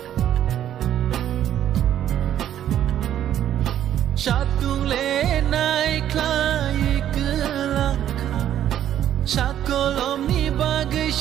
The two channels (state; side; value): quieter; left; 11.0 dB